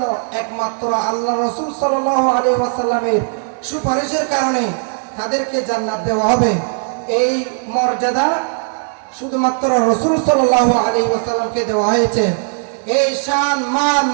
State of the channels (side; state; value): left; silent; digital silence